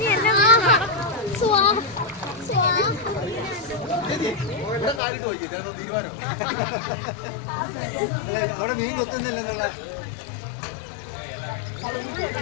അവിടെ മീൻ കൊത്തുന്നില്ലെന്നുള്ള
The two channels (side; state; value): right; drops out; at 5.0 s